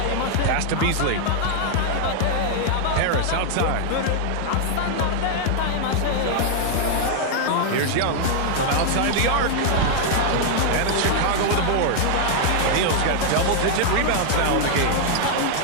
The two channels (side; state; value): both; different; correlation 0.00